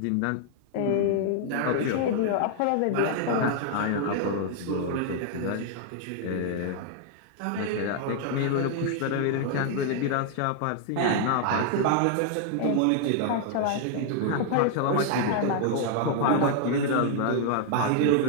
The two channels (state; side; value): different; both; correlation 0.00